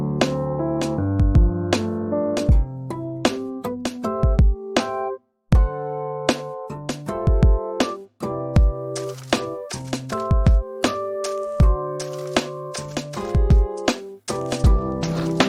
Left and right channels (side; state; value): both; identical; correlation 1.00